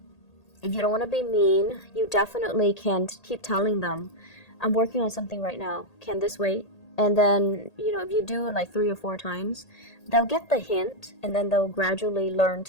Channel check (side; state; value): right; late; 1.8 ms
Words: you don't want to be mean, you definitely can keep telling them, I'm working on something right now. Can this wait? And then, if you do it like 3 or 4 times, they'll get the hint, and then they'll gradually learn